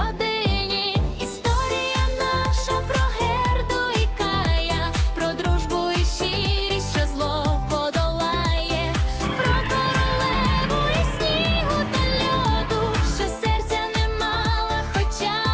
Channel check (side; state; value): both; identical; correlation 1.00